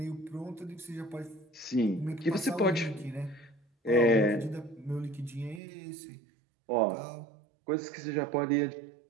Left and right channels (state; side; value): drops out; left; at 5.6 s